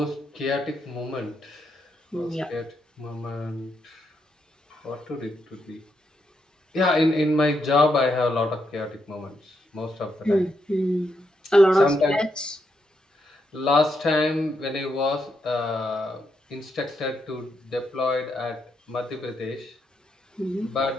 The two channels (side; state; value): both; normal; correlation 0.80